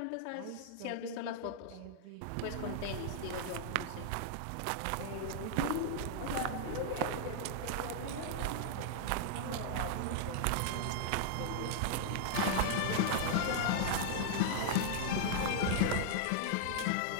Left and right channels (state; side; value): different; both; correlation -0.01